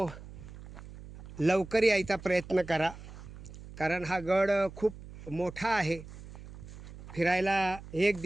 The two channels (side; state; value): right; noise; hum, 15 dB below the sound